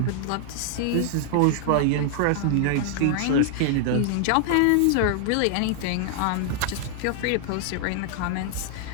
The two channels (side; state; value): both; different; correlation 0.00